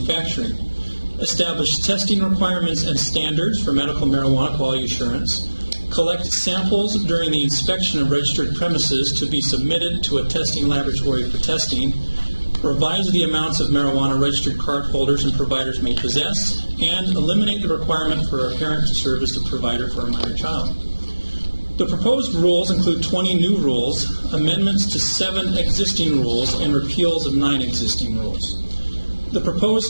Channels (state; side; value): inverted; both; correlation -1.00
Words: Establish testing requirements and standards for medical marijuana quality assurance, collect samples during the inspection of registered premises to be submitted to a testing laboratory for testing, revise the amounts of marijuana registered card holders and providers may possess, and eliminate the requirement for a parent to serve as the provider for a minor child. The proposed rules include 20 new rules, amendments to 7 existing rules, and repeals of 9 existing rules. The